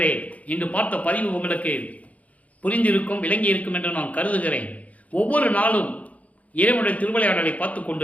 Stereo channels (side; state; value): right; late; 0.069 ms